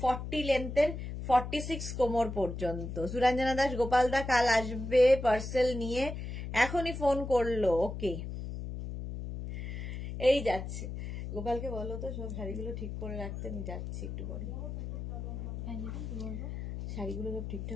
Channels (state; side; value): noise; left; hum, 6 dB below the sound